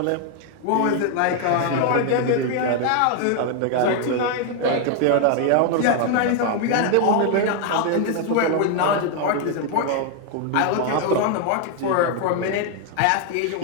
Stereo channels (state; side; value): different; both; correlation 0.00